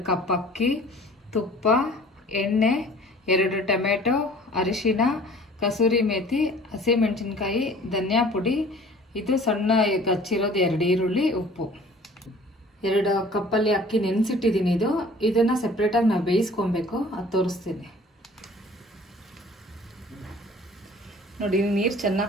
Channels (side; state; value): both; normal; correlation 0.49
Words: ಕಪ್ ಅಕ್ಕಿ, ತುಪ್ಪ, ಎಣ್ಣೆ, 2 ಟೊಮೆಟೊ, ಅರಿಶಿನ, ಕಸೂರಿ ಮೇಥಿ, ಹಸಿಮೆಣಸಿನ್ಕಾಯಿ, ಧನಿಯಾ ಪುಡಿ, ಇದು ಸಣ್ಣ ಹಚ್ಚಿರೋದು 2 ಈರುಳ್ಳಿ, ಉಪ್ಪು. 2 ಕಪ್ಪಲ್ಲಿ ಅಕ್ಕಿ ನೆನೆಸಿಟ್ಟಿದ್ದೀನಿ. ಇದನ್ನು ಸಪ್ರೇಟಾಗಿ ನಾವು ಬೇಯಿಸ್ಕೊಬೇಕು, ಅದು ತೋರಿಸ್ತೀನಿ. ನೋಡಿ ನೀರು